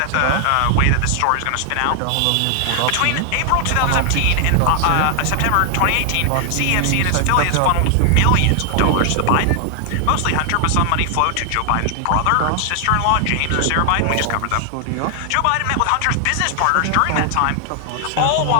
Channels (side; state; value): both; different; correlation 0.00